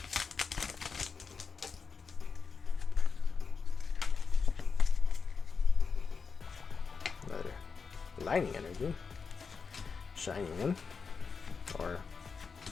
Another lightning energy. Shiny one. Or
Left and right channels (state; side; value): quieter; right; 5.3 dB